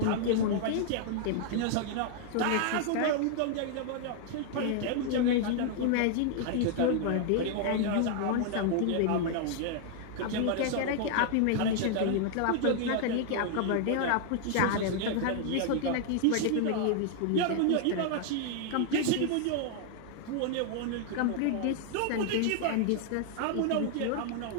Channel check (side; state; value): both; different; correlation 0.00